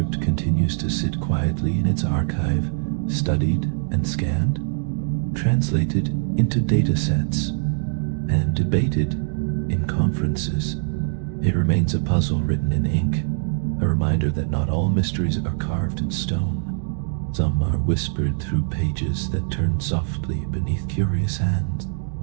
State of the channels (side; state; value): left; silent; 64 dB below the other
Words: continues to sit quietly in its archive, studied and scanned, translated into data sets, and debated in conferences. It remains a puzzle written in ink, a reminder that not all mysteries are carved in stone. Some are whispered through pages that turn softly beneath curious hands.